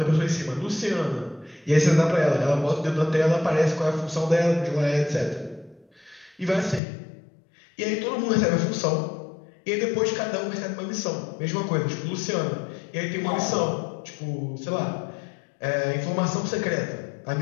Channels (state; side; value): drops out; right; at 6.8 s